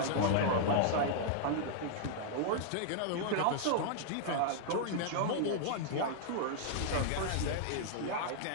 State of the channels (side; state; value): both; different; correlation -0.01